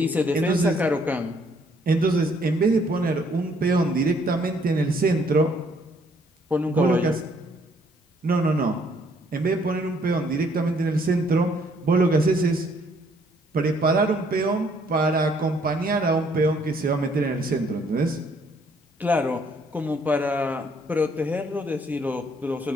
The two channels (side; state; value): both; normal; correlation 0.65